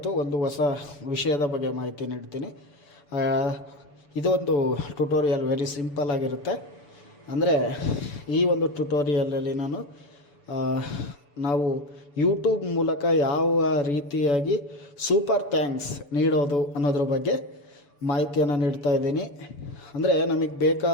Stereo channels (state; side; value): late; right; 6.9 ms